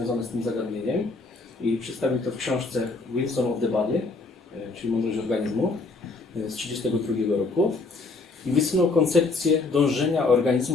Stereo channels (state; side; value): quieter; right; 3.7 dB